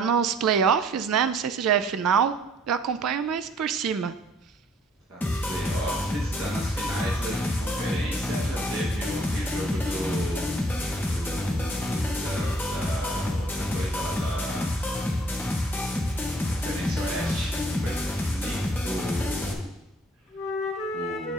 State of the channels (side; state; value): both; normal; correlation 0.60